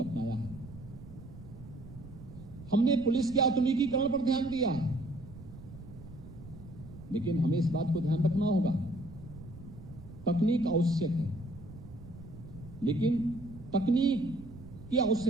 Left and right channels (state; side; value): noise; right; rumble, 15 dB below the sound